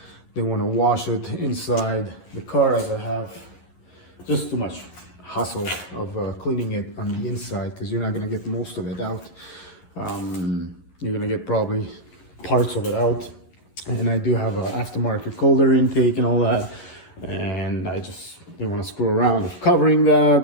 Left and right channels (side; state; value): right; late; 11 ms